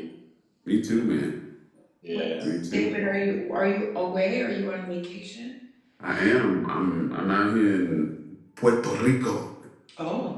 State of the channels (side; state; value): both; identical; correlation 1.00